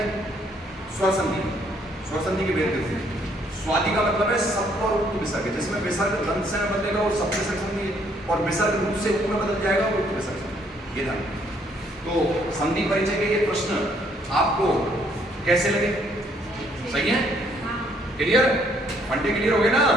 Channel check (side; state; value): both; normal; correlation 0.67